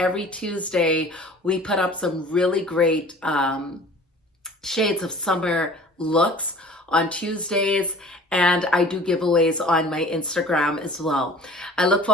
Tuesday we put up some really great shades of summer looks on Tuesdays, and I do giveaways on my Instagram as well. I look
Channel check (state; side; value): normal; both; correlation 0.46